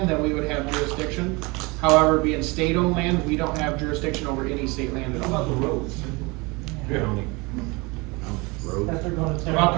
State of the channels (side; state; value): left; quieter; 26.1 dB